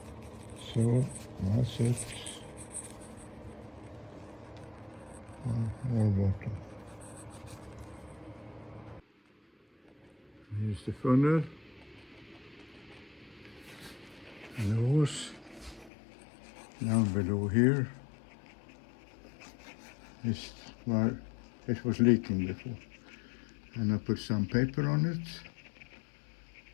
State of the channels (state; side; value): drops out; right; at 15.9 s